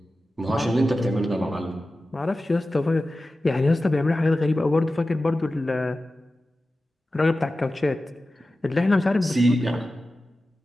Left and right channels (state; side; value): normal; both; correlation 0.94